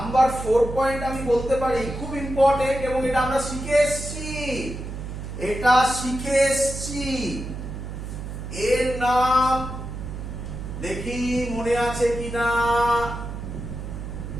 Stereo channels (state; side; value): noise; right; hum, 8 dB below the sound